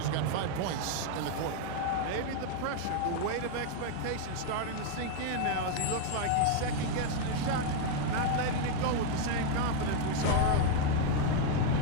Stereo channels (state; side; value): different; both; correlation 0.01